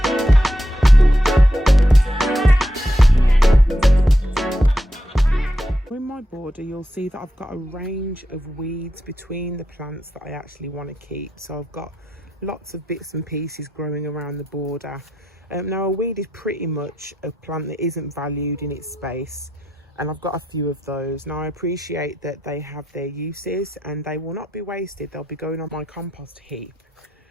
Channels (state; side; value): normal; both; correlation 0.84